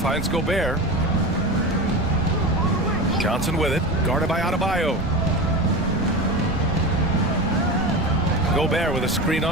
Gobert. Johnson with it. Guarded by Adebayo. Gobert with a screen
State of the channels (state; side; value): noise; right; rumble, 7 dB below the sound